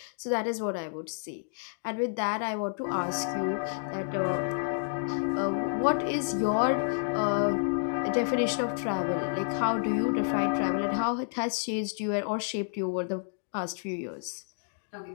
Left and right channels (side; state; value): right; silent; digital silence